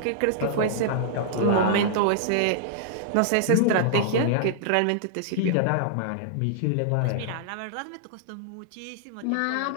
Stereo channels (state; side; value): different; both; correlation -0.01